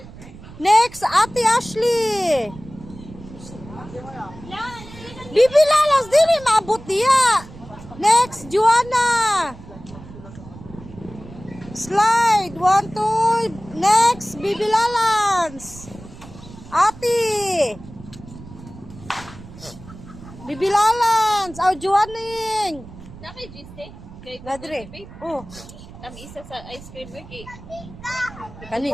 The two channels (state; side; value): noise; right; rumble, 17 dB below the sound